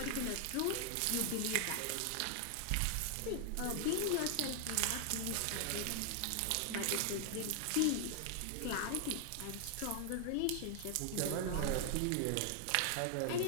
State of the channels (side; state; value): both; different; correlation 0.00